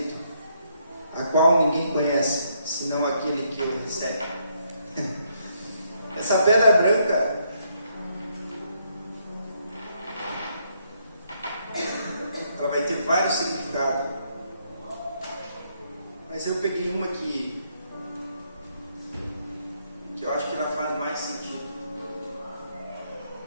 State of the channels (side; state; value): both; inverted; correlation -0.73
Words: a qual ninguém conhece, senão aquele que o recebe. Essa pedra branca, ela vai ter vários significados. Mas eu peguei uma que eu acho que ela faz mais sentido.